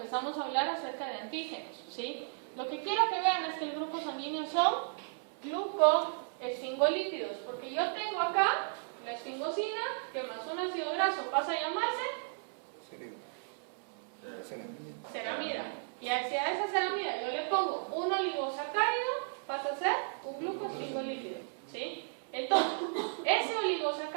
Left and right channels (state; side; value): silent; left; 55 dB below the other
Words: a hablar acerca de antígenos, ¿sí? Lo que quiero que vean es que el grupo sanguíneo son glucoesfingolípidos, porque yo tengo acá la esfingosina, que más un ácido graso pasa a llamarse ceramida. Y hacia esa ceramida yo le pongo un oligosacárido, pasa a ser un glucosfingolípido, ¿sí? Entonces, ese